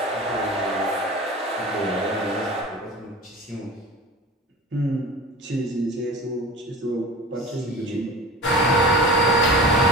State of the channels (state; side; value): normal; both; correlation 0.35